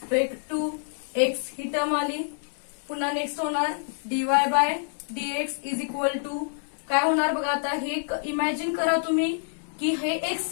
to x, ही टर्म आली. पुन्हा नेक्स्ट होणार dy by dx is equal to काय होणार बघा. आता हे इमॅजिन करा तुम्ही की हे एक्स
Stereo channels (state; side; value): silent; right; 60 dB below the other